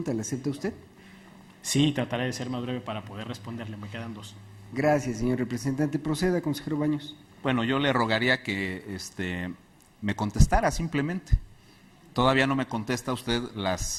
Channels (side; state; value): both; identical; correlation 1.00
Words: ¿La acepta usted? Sí, trataré de ser más breve para poder responderle, me quedan 2. Gracias, señor representante. Proceda, consejero Baños. Bueno, yo le rogaría que me contestara simplemente. Todavía no me contesta usted